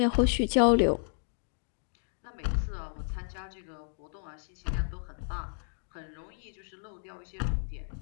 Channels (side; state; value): right; silent; 56 dB below the other